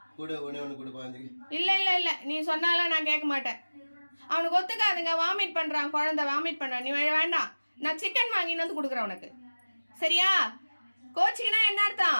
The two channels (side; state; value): both; inverted; correlation -1.00